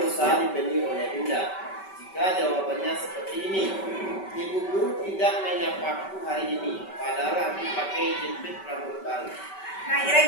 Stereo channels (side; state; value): right; late; 5.2 ms